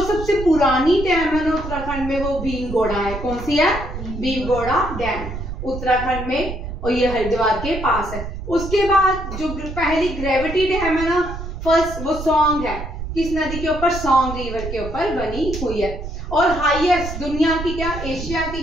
सबसे पुरानी डैम है ना उत्तराखंड में वो भीमगोड़ा है। कौन सी है? भीमगोड़ा डैम उत्तराखंड में, और ये हरिद्वार के पास है। उसके बाद जो पहली ग्रेविटी डैम है ना, फर्स्ट, वो सॉन्ग है। किस नदी के ऊपर? सॉन्ग रिवर के ऊपर बनी हुई है। और हाईएस्ट दुनिया की, क्या एशिया की,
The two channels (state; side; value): noise; right; rumble, 8 dB below the sound